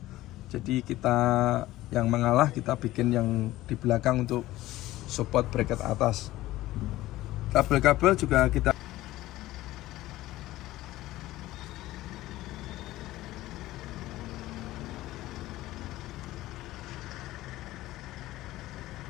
Jadi kita yang mengalah kita bikin yang di belakang untuk support bracket atas. Kabel-kabel juga kita.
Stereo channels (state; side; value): quieter; right; 16.4 dB